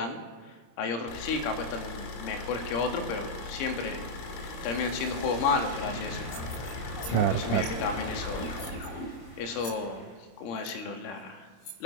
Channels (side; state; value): right; late; 26 ms